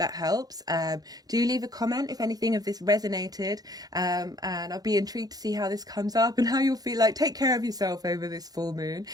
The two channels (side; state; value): left; late; 0.19 ms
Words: helps. Do leave a comment if anything of this resonated, and I'll be intrigued to see how this comes up and how you'll feel. Like, take care of yourself over this full moon.